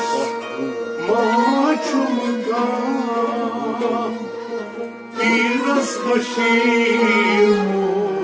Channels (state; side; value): identical; both; correlation 1.00